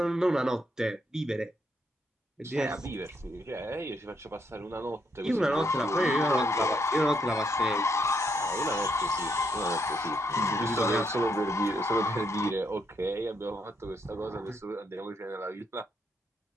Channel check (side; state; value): both; normal; correlation 0.76